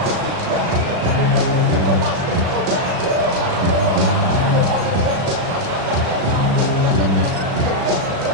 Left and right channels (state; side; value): late; left; 36 ms